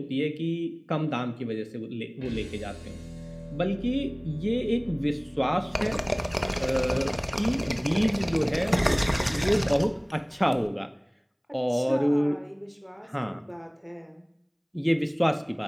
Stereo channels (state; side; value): identical; both; correlation 1.00